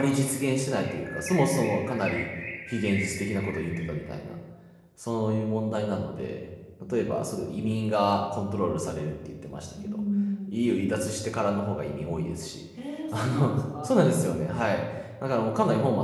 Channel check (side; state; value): both; identical; correlation 1.00